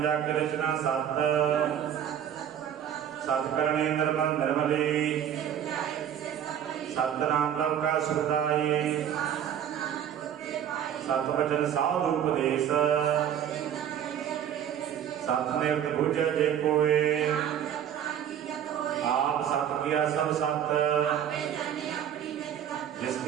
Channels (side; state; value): left; quieter; 9.6 dB